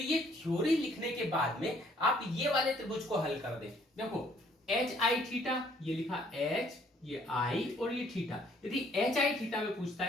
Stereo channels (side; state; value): both; normal; correlation 0.63